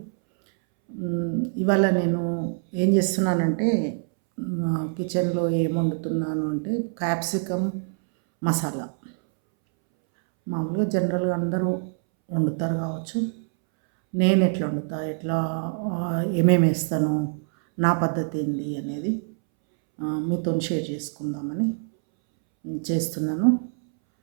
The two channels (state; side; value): silent; left; 62 dB below the other